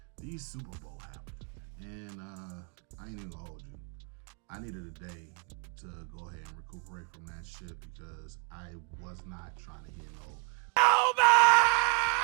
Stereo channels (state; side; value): quieter; left; 36.9 dB